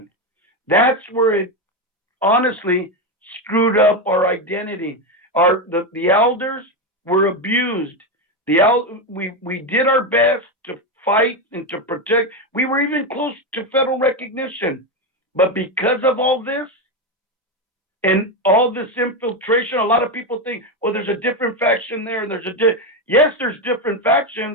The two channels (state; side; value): normal; both; correlation 0.11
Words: That's where it honestly screwed up our identity. The elders were abused. We did our best to fight and to protect. We were even close to federal recognition. But because of all this and all this infiltration, a lot of people think, well, there's a different faction there. And yes, there's different